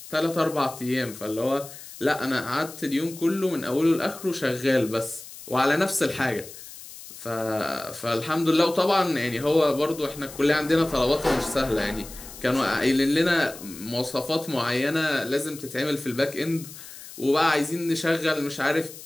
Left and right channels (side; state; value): left; noise; hiss, 15 dB below the sound